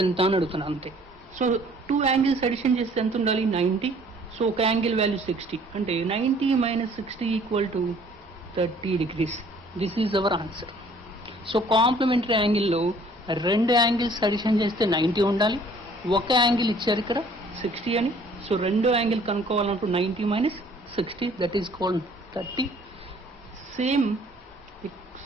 ఎంత అని అడుగుతున్నా అంతే. సో టూ యాంగిల్స్ అడిషన్ చేస్తే ఎంత ఉండాలి? 90. సో ఒక యాంగిల్ వాల్యూ 60 అంటే 90 - 60 = 30 degrees. This is our answer. So complementary యాంగిల్లో రెండు యాంగిల్స్ అడిషన్ చేస్తే 90 ఉండాలి, ఒక యాంగిల్ ఇచ్చారు ఇక్కడ 60 అని. సో రెండో యాంగిల్ కనుక్కోవాలంటూ 90 - 60 that is called 30. Same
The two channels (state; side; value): normal; both; correlation 0.56